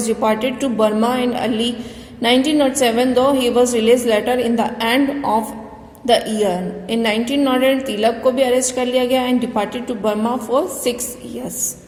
deported to Burma in early 1907, though he was released later in the end of the year. In 1908, Tilak को भी arrest कर लिया गया and deported to Burma for 6 years.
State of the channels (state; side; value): identical; both; correlation 1.00